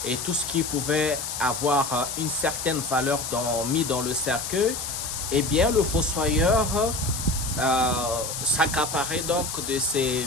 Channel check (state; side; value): noise; left; hiss, 5 dB below the sound